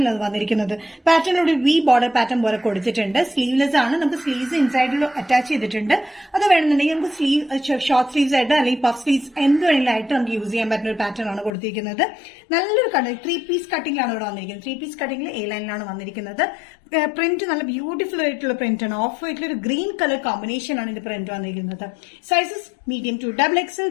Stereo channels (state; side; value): drops out; right; at 11.5 s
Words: വന്നിരിക്കുന്നത്. പാറ്റേൺ ഒരു വി ബോർഡർ പാറ്റേൺ പോലെ കൊടുത്തിട്ടുണ്ട്. സ്ലീവ്ലെസ് ആണ്. നമുക്ക് സ്ലീവ്സ് ഇൻസൈഡിൽ അറ്റാച്ച് ചെയ്തിട്ടുണ്ട്. അത് വേണമെന്നുണ്ടെങ്കിൽ നമുക്ക് സ്ലീവ് ഷോർട്ട് സ്ലീവ്സ് ആയിട്ട് അല്ലെങ്കിൽ പഫ് സ്ലീവ്സ് എന്ത് വേണമെങ്കിലായിട്ട് നമുക്ക് യൂസ് ചെയ്യാൻ പറ്റുന്ന ഒരു പാറ്റേൺ ആണ് കൊടുത്തിരിക്കുന്നത്. നല്ലൊരു കട്ടിങ് 3 പീസ് കട്ടിംഗിലാണ് ഇവിടെ വന്നിരിക്കുന്നത്. 3 പീസ് കട്ടിംഗിൽ എ ലൈനിലാണ് വന്നിരിക്കുന്നത്. പ്രിന്റ് നല്ല ബ്യൂട്ടിഫുൾ ആയിട്ടുള്ള പ്രിന്റ് ആണ്. ഓഫ് വൈറ്റിൽ ഒരു ഗ്രീൻ കളർ കോമ്പിനേഷൻ ആണ് ഇത് പ്രിന്റ് വന്നിരിക്കുന്നത്. Sizes medium to XXL.